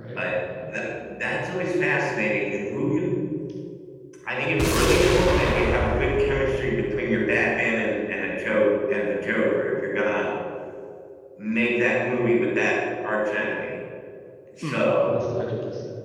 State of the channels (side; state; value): both; identical; correlation 1.00